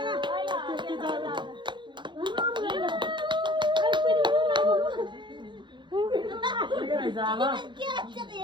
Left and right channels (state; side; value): late; left; 0.23 ms